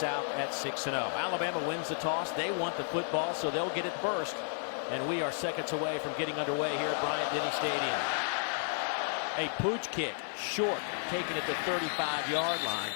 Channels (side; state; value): right; silent; 56 dB below the other